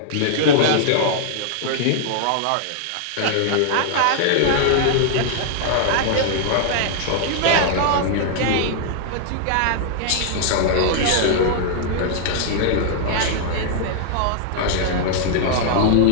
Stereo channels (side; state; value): both; different; correlation -0.01